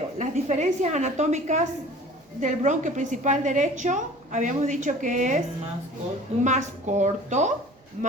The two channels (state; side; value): normal; both; correlation 0.45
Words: las diferencias anatómicas del bronquio principal derecho, habíamos dicho que es más corto,